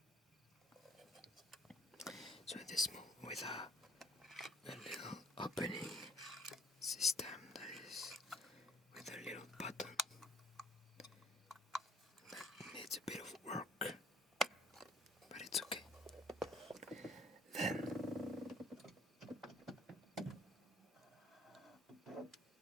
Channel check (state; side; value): normal; both; correlation 0.57